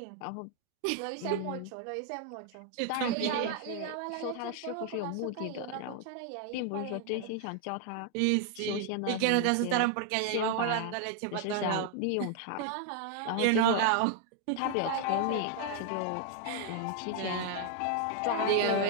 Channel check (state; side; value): different; both; correlation 0.00